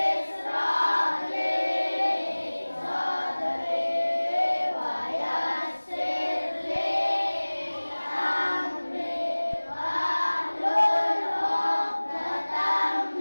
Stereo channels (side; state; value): both; inverted; correlation -1.00